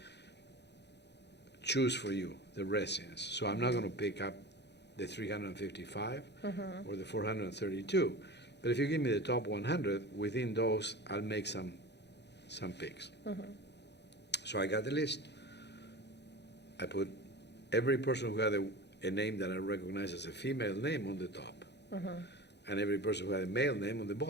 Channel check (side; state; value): right; late; 0.50 ms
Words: choose for you. the residents. So I'm not going to pick up the 355 or the 432. But if you give me the top 100, within those, I'll make some picks. So I got the list. I put every person who had a name that I recognize as a female name on the top, and every person who had a male name on the